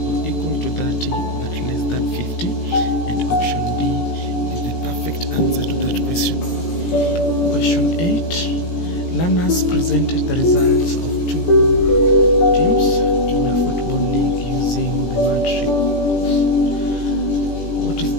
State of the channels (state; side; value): late; right; 17 ms